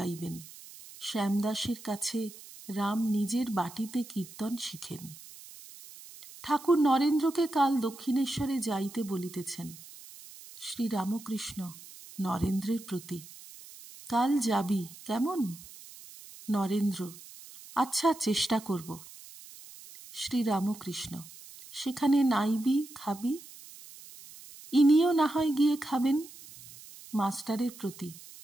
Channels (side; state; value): right; noise; hiss, 18 dB below the sound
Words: শ্যামদাসের কাছে রাম নিজের বাটিতে কীর্তন শিখেন। ঠাকুর নরেন্দ্রকে কাল দক্ষিণেশ্বরে যাইতে বলিতেছেন। শ্রীরামকৃষ্ণ নরেন্দ্রের প্রতি: কাল যাবি কেমন? নরেন্দ্র: আচ্ছা, চেষ্টা করব। শ্রীরামকৃষ্ণ: সেখানে নাইবি, খাবি? ইনিও না হয় গিয়ে খাবেন। মাস্টারের প্রতি: